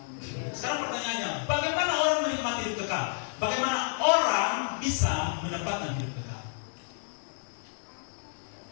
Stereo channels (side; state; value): right; silent; digital silence